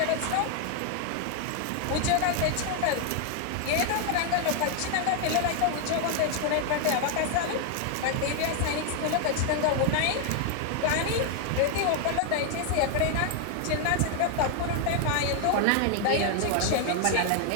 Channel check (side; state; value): both; different; correlation 0.00